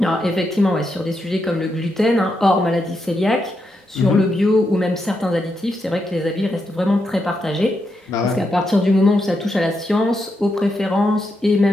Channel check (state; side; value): normal; both; correlation 0.83